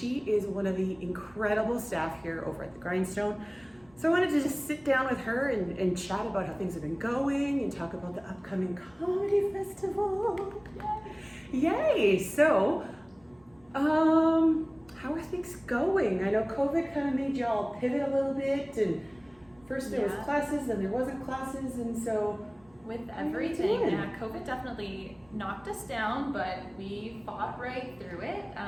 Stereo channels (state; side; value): noise; right; rumble, 30 dB below the sound